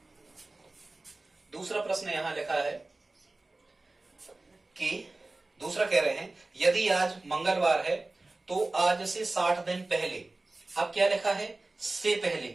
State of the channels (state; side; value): quieter; left; 3.1 dB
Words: दूसरा प्रश्न यहां लिखा है कि दूसरा कह रहे हैं यदि आज मंगलवार है तो आज से 60 दिन पहले। अब क्या लिखा है, से